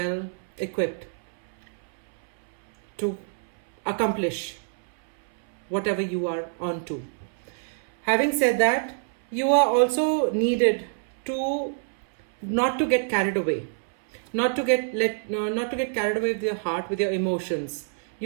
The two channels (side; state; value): left; silent; 61 dB below the other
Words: equipped to accomplish whatever you are on to. Having said that, you are also needed to not to get carried away, not to get carried away with your heart, with your emotions.